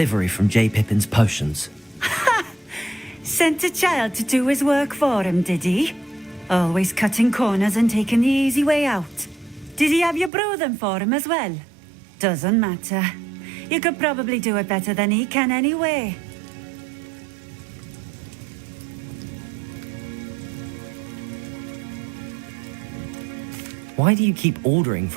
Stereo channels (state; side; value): drops out; left; at 10.3 s